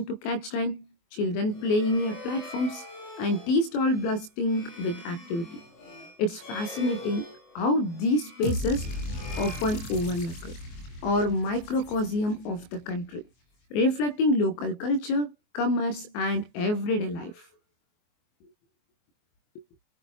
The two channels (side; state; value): right; late; 24 ms